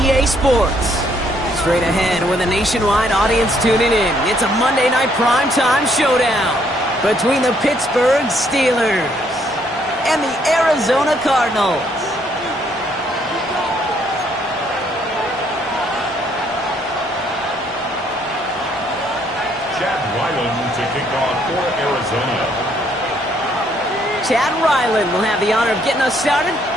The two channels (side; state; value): both; normal; correlation 0.68